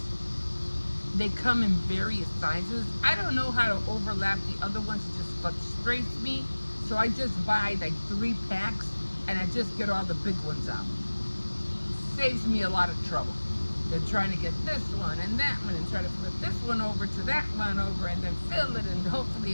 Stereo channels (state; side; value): inverted; both; correlation -1.00